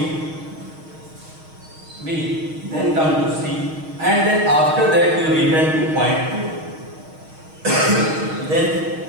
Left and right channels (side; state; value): left; late; 6.4 ms